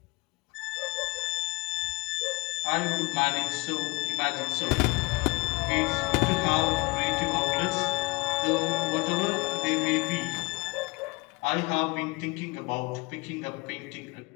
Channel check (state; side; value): quieter; right; 25.0 dB